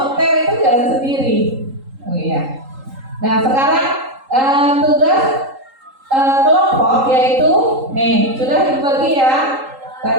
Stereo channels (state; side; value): late; left; 3.8 ms